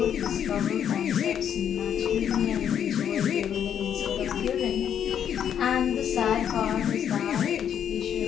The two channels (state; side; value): quieter; right; 9.0 dB